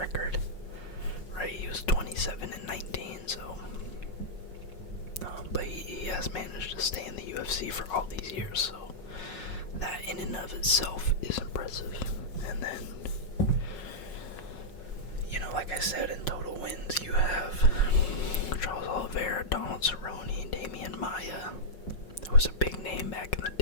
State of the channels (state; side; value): late; right; 5.5 ms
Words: right? He was 27-19, so. But he has managed to stay in the UFC for all these years, so that in and of itself is impressive. And then, like I said, in total wins, you have Charles Oliveira, Donald Cerrone, Damian Maia, who was a big name back in